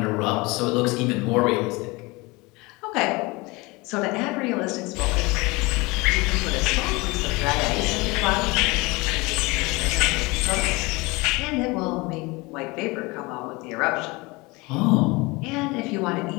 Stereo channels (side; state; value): right; quieter; 24.4 dB